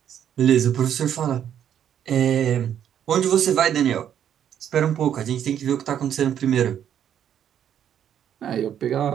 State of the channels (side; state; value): left; quieter; 9.6 dB